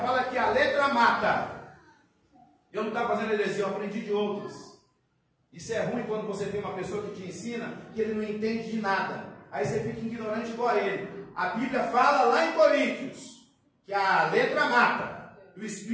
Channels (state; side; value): identical; both; correlation 1.00